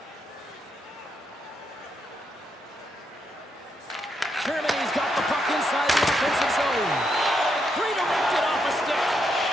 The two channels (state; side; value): normal; both; correlation 0.80